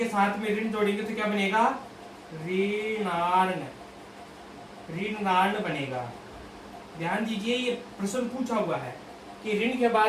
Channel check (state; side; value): identical; both; correlation 1.00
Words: साथ में ऋण जोड़ेंगे तो क्या बनेगा, ऋणार्ण, ऋणार्ण बनेगा। ध्यान दीजिए, ये प्रश्न पूछा हुआ है कि ऋण के